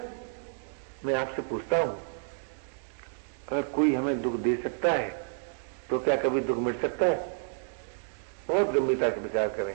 मैं आपसे पूछता हूं, अगर कोई हमें दुख दे सकता है तो क्या कभी दुख मिट सकता है? बहुत गंभीरता से विचार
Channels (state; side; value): silent; left; digital silence